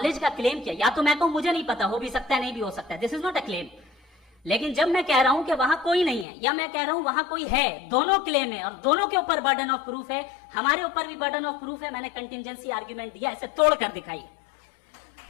کا کلیم کیا. یا تو میں کہوں مجھے نہیں پتا, ہو بھی سکتا ہے نہیں بھی ہو سکتا ہے, دس از ناٹ اے کلیم. لیکن جب میں کہہ رہا ہوں کہ وہاں کوئی نہیں ہے, یا میں کہہ رہا ہوں وہاں کوئی ہے, دونوں کلیم ہے اور دونوں کے اوپر برڈن آف پروف ہے. ہمارے اوپر بھی برڈن آف پروف ہے. میں نے کنٹینجنسی آرگیومنٹ دیا, اسے توڑ کر دکھائیے.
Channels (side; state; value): right; drops out; at 6.2 s